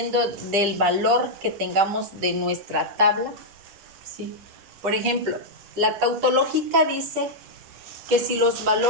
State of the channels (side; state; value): left; late; 10 ms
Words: del valor que tengamos de nuestra tabla. ¿Sí? Por ejemplo, la tautológica dice que si los